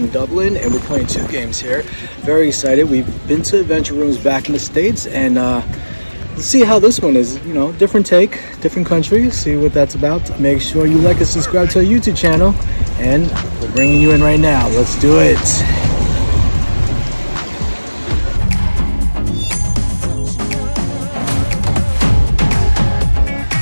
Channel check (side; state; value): both; inverted; correlation -1.00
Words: Dublin and we're playing 2 games here. Very excited. We've been to AdventureRooms back in the States and let's see how this one is. You know, different take, different country, see what that's about. Make sure you like and subscribe to our YouTube channel and we're bringing you in right now. Let's do it.